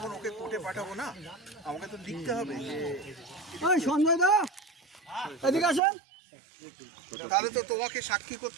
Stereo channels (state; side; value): drops out; left; at 5.8 s